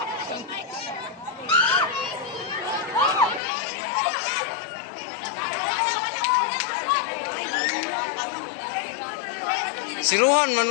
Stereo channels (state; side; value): drops out; right; at 3.4 s